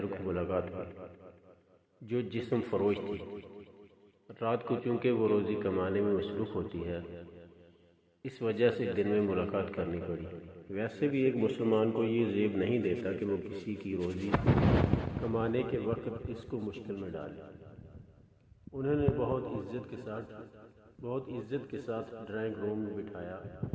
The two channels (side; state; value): both; identical; correlation 1.00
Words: کو ملاقات ہوئی جو جسم فروش تھی۔ رات کو چونکہ وہ روزی کمانے میں مصروف ہوتی ہے، اس وجہ سے دن میں ملاقات کرنی پڑی۔ ویسے بھی ایک مسلمان کو یہ زیب نہیں دیتا کہ وہ کسی کی روزی کمانے کے وقت اس کو مشکل میں ڈالے۔ انہوں نے بہت عزت کے ساتھ ڈرائنگ روم میں بٹھایا،